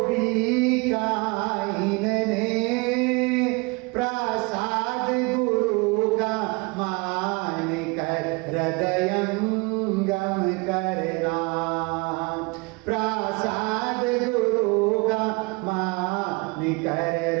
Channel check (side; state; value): left; quieter; 28.4 dB